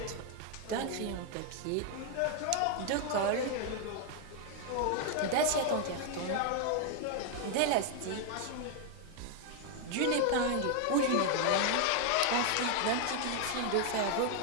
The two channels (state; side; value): different; both; correlation 0.00